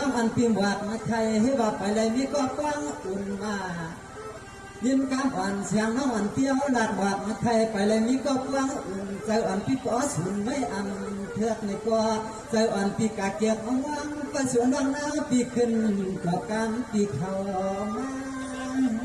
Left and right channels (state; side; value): identical; both; correlation 1.00